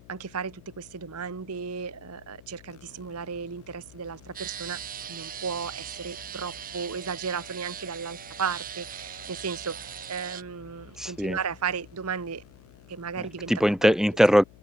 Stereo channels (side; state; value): left; noise; hum, 21 dB below the sound